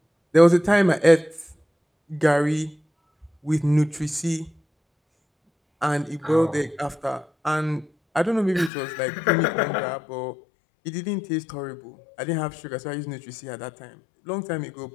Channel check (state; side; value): drops out; right; at 8.7 s